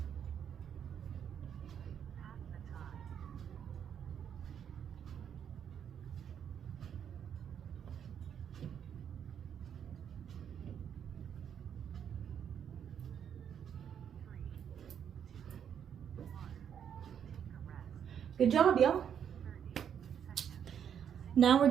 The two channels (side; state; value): left; quieter; 8.5 dB